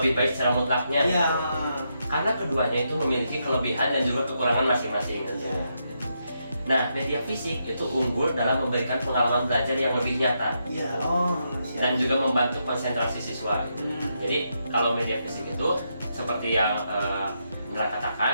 baik secara mutlaknya. Iya. Karena keduanya itu memiliki kelebihan dan juga kekurangan masing-masing. Iya. Nah, media fisik itu unggul dalam memberikan pengalaman belajar yang lebih nyata. Iya. Dan juga membantu konsentrasi siswa. Jadi kalau media fisik itu seperti yang Indra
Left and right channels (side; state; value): both; inverted; correlation -0.81